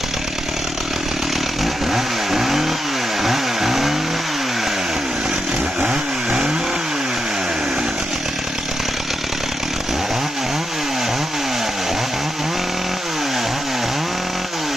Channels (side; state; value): both; normal; correlation 0.85